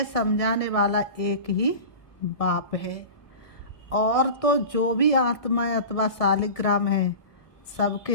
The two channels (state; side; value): late; right; 1.7 ms